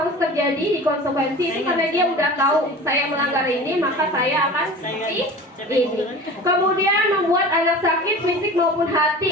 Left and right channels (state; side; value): normal; both; correlation 0.37